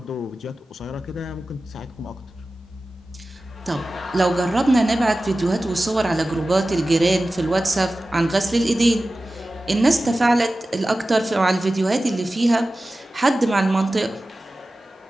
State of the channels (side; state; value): both; normal; correlation 0.95